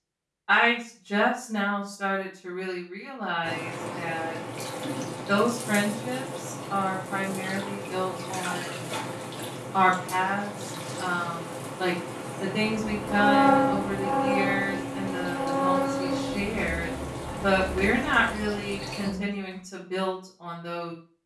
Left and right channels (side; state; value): both; identical; correlation 1.00